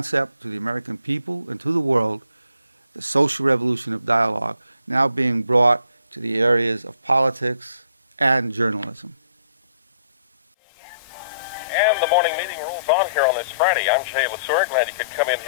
to the American people and to the world, the social revolution of dialogue, now being brought to the areas of politics and journalism. And the morning meeting rolls on here on this Friday. I'm Jay Lesur. Glad you could come in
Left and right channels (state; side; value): inverted; both; correlation -0.65